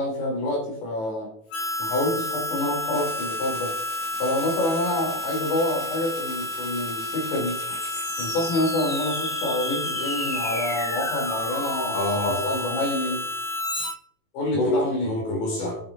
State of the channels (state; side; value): late; right; 18 ms